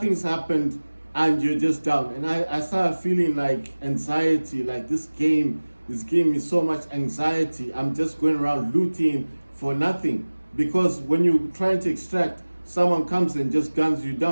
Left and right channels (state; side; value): inverted; both; correlation -1.00